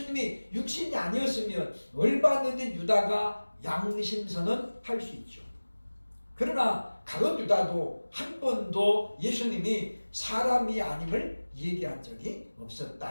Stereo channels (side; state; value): both; inverted; correlation -1.00